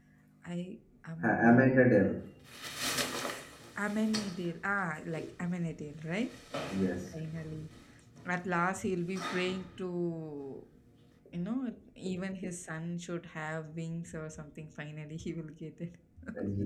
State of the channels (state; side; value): identical; both; correlation 1.00